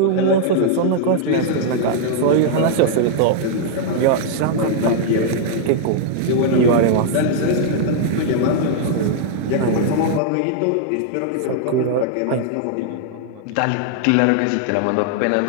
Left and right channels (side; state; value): both; different; correlation -0.01